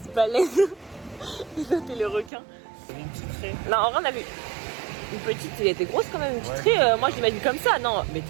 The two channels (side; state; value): left; drops out; at 2.3 s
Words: baleine? Et toi t'es le requin. C'était une petite raie. Non, en vrai, on a vu une petite. Elle était grosse quand même. Une petite Ouais. raie. Moi je l'imagine comme ça. Non, mais